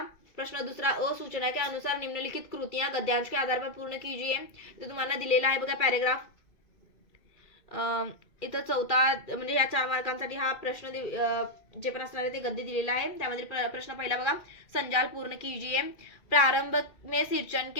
प्रश्न दुसरा, सूचना के अनुसार निम्नलिखित कृतियां गद्यांश के आधार पर पूर्ण कीजिए. तर तुम्हाला दिलेला आहे बघा पॅराग्राफ. इथं चौथा म्हणजे या 4 मार्कांसाठी हा प्रश्न जे पण असणार आहे ते गद्य दिलेला आहे. त्यामध्ये प्रश्न पहिला बघा, संजाल पूर्ण कीजिए. प्रारंभ में सिंचन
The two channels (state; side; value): late; right; 2.4 ms